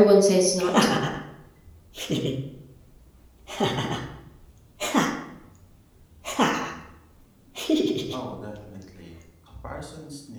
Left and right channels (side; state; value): both; identical; correlation 1.00